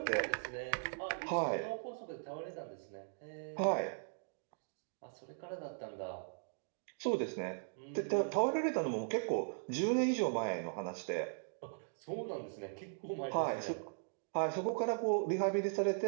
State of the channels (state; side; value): silent; left; digital silence